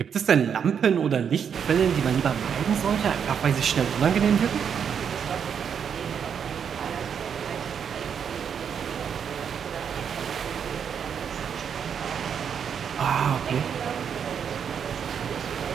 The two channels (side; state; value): left; quieter; 7.5 dB